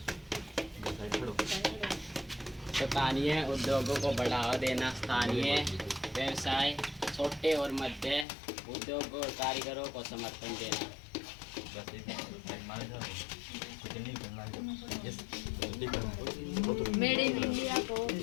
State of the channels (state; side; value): drops out; right; at 8.2 s